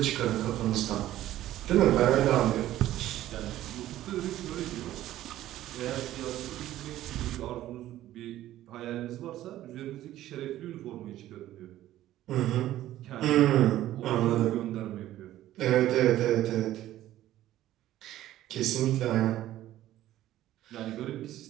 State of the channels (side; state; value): left; quieter; 13.9 dB